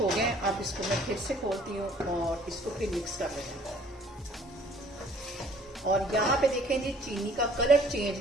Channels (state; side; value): normal; both; correlation 0.56